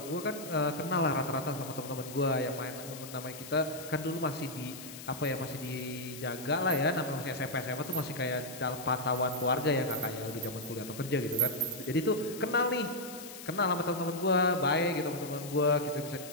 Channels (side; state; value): left; noise; hiss, 13 dB below the sound